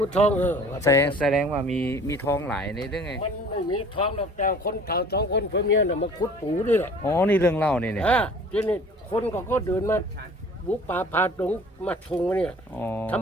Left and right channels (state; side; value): normal; both; correlation 0.48